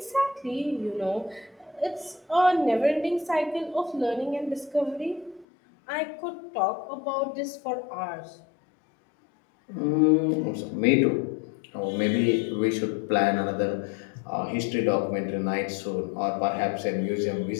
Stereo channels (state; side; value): drops out; right; at 5.5 s